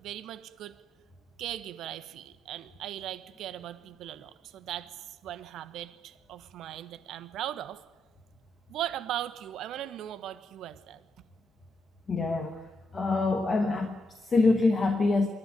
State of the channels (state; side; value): normal; both; correlation 0.81